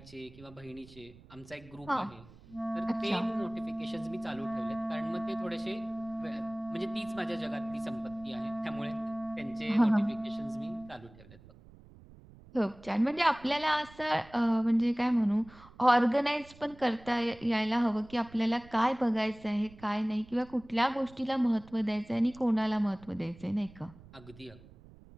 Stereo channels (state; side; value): noise; right; rumble, 22 dB below the sound